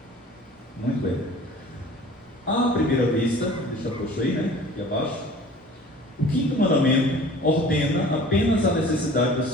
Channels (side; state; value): both; normal; correlation 0.46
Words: Muito bem. À primeira vista, deixa eu puxar aí, né? Aqui abaixo. O quinto mandamento ordena apenas a necessidade